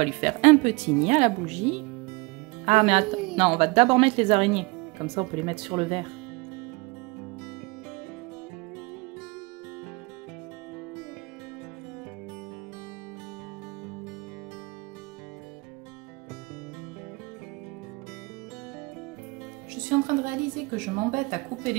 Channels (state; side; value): quieter; left; 26.0 dB